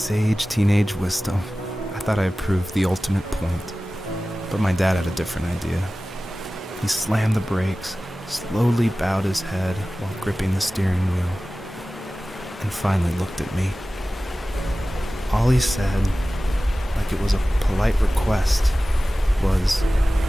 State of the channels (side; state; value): both; normal; correlation 0.96